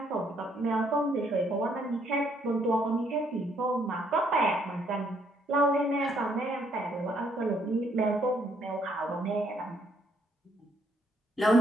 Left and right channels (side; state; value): both; normal; correlation 0.69